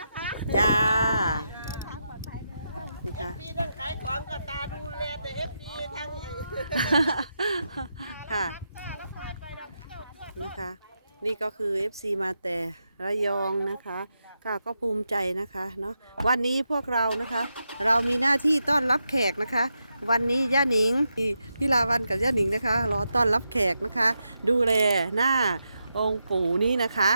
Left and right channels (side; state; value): both; inverted; correlation -0.86